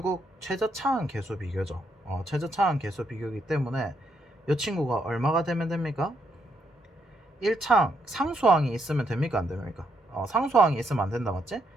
최저차항 계수 비교죠. 최저차항 계수 비교이기 때문에 이 친구가 얼마가 되면 됩니까? 1차항 상수항이 있으면 됩니까 안 됩니까? 상수항이 있으면 안 된다 맞지?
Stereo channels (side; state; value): both; normal; correlation 0.77